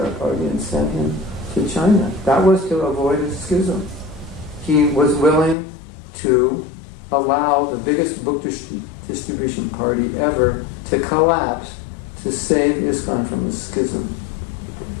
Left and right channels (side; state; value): right; drops out; at 5.6 s